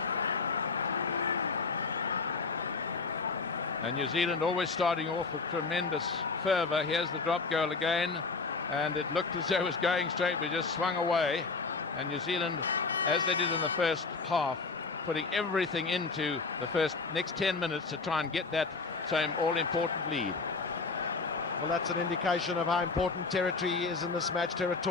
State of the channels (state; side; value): quieter; right; 4.2 dB